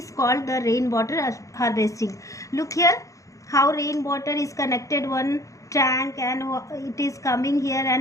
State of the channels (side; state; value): right; late; 0.16 ms